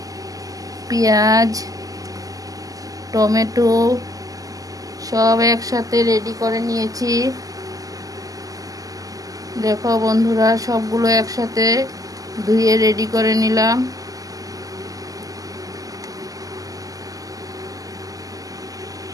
পেঁয়াজ, টমেটো সব একসাথে রেডি করে নিয়েছি। দেখো বন্ধুরা, সবগুলো একসাথে ধুয়ে রেডি করে নিলাম।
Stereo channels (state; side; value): late; left; 0.17 ms